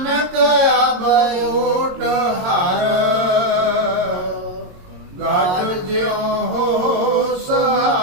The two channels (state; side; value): late; left; 22 ms